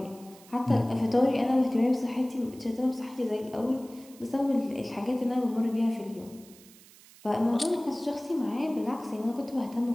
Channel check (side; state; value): right; noise; hiss, 23 dB below the sound